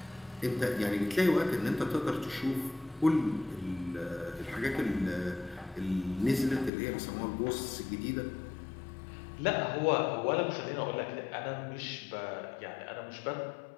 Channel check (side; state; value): right; drops out; at 6.7 s